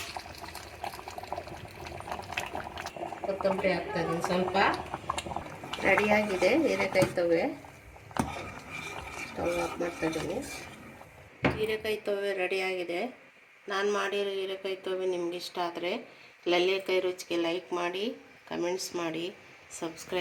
ಕೊತ್ತಂಬರಿ ಹಾಕ್ತಾಯಿದ್ದೀನಿ. ಸ್ವಲ್ಪ ರೆಡಿಯಾಗಿದೆ ಹೀರೆಕಾಯಿ ತೊವ್ವೆ. ಸ್ಟವ್ ಆಫ್ ಮಾಡ್ತಾಯಿದ್ದೀನಿ. ಹೀರೆಕಾಯಿ ತೊವ್ವೆ ರೆಡಿಯಾಗಿದೆ. ನಾನು ಮಾಡಿರೋ ಹೀರೆಕಾಯಿ ತೊವ್ವೆ ನಿಮ್ಗೆ ಇಷ್ಟ ಆದರೆ ಲಲ್ಲಿ ಕೈ ರುಚಿಗೆ ಲೈಕ್ ಮಾಡಿ, ಕಮೆಂಟ್ಸ್ ಮಾಡಿ,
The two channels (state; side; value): identical; both; correlation 1.00